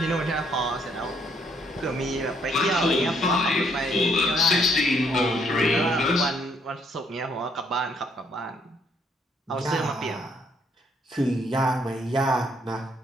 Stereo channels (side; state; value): both; normal; correlation 0.69